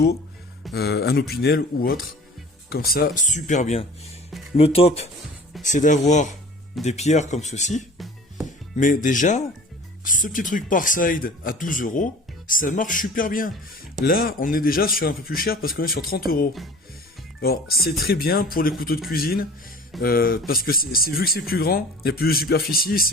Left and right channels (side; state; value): both; normal; correlation 0.43